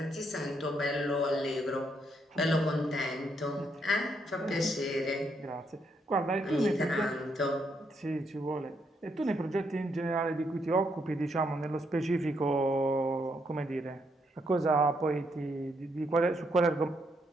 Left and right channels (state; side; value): normal; both; correlation 0.76